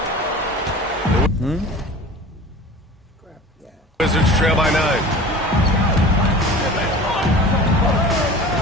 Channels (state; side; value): normal; both; correlation 0.39